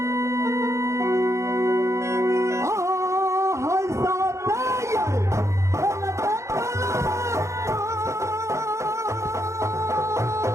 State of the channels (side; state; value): left; late; 0.14 ms